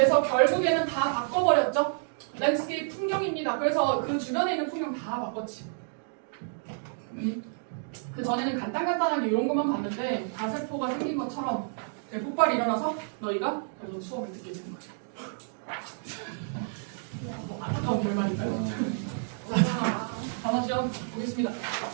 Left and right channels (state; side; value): silent; left; digital silence